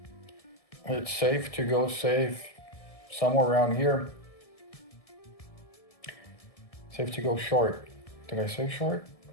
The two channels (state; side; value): late; right; 1.7 ms